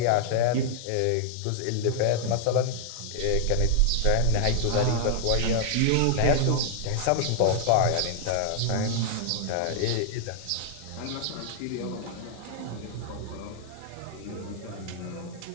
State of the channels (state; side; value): different; both; correlation 0.00